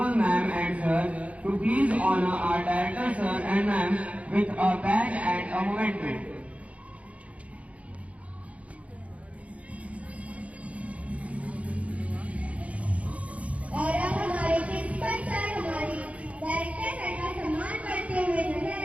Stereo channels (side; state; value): left; late; 0.065 ms